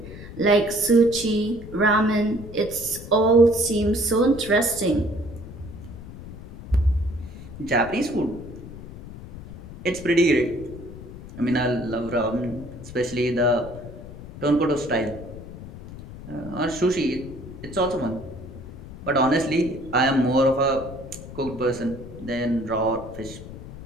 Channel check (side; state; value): left; noise; rumble, 14 dB below the sound